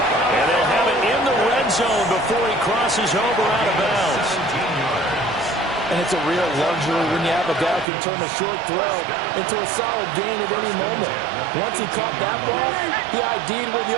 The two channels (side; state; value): left; drops out; at 7.9 s